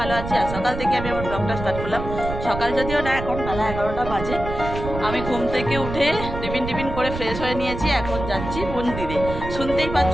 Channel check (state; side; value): noise; right; rumble, 7 dB below the sound